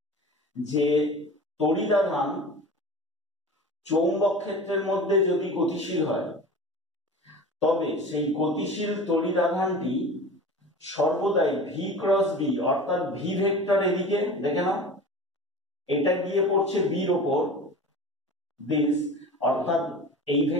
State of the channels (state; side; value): normal; both; correlation 0.36